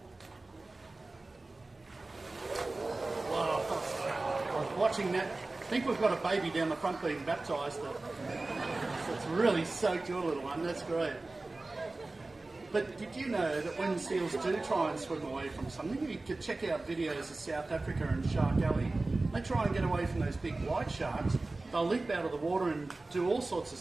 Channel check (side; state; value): left; quieter; 3.2 dB